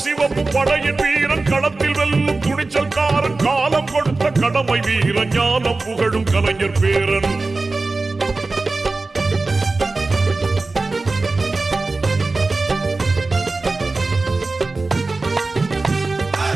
சிவப்பு படையின் வீரன் களத்தில் வெல்லும் துணிச்சல்காரன் காலம் கொடுத்த கடமை வீரன் ஞானம் புகழும் கலைஞர் பேரன்.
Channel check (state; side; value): quieter; left; 3.5 dB